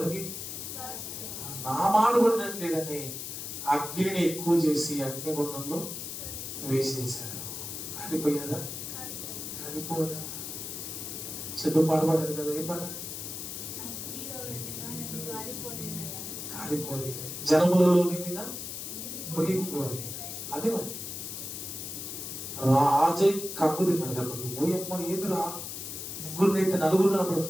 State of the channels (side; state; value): left; noise; hiss, 7 dB below the sound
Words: నా మాట పడినట్లేదని అగ్నిని ఎక్కువ చేసి అగ్నిగుండంలో వేసేశారు. కాలిపోయారా? కాలిపోరా? చదువు పాడబడాడు కదా, ఏ పాట? కాలిపోలేదు. జనములలో విందిన మునిగిపోలేదు. అదే మరి రాజై కక్కు తిన్నాడు దెబ్బకి. ఓయమ్మ ఏదిరా, ముగ్గురునైతే నలుగురు